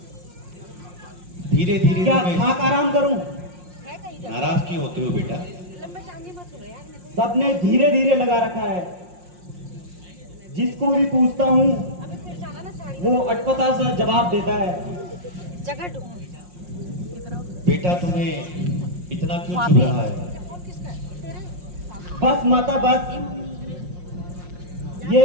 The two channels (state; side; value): late; left; 5.6 ms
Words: धीरे धीरे क्या तुम्हें। खाक आराम करूं? नाराज क्यों होते हो बेटा? सबने धीरे धीरे लगा रखा है, जिसको भी पूछता हूँ वो अटपटा सा जवाब देता है। बेटा तुम्हें इतना क्यों चुभ रहा है? बस माता बस,